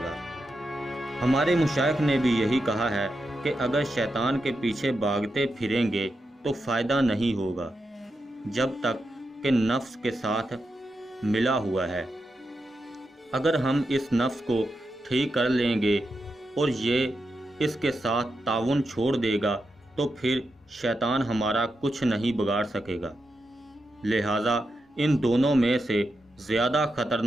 ہمارے مشائخ نے بھی یہی کہا ہے کہ اگر شیطان کے پیچھے بھاگتے پھریں گے تو فائدہ نہیں ہوگا جب تک کہ نفس کے ساتھ ملا ہوا ہے۔ اگر ہم اس نفس کو ٹھیک کر لیں گے اور یہ اس کے ساتھ تعاون چھوڑ دے گا تو پھر شیطان ہمارا کچھ نہیں بگاڑ سکے گا۔ لہٰذا ان دونوں میں سے زیادہ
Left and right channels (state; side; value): normal; both; correlation 0.87